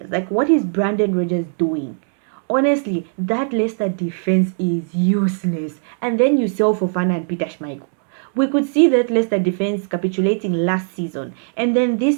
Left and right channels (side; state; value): left; silent; digital silence